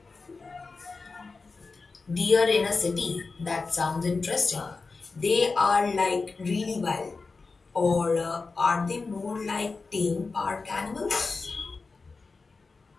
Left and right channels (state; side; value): quieter; right; 4.1 dB